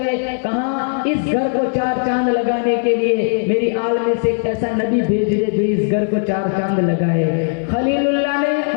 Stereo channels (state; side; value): silent; right; 67 dB below the other